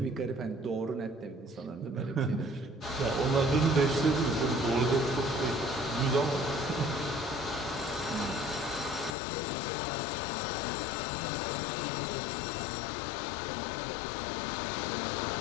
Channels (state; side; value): drops out; right; at 9.2 s